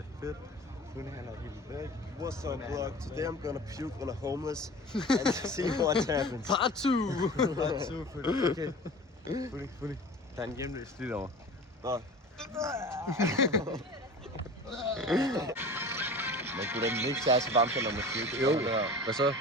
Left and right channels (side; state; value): both; normal; correlation 0.38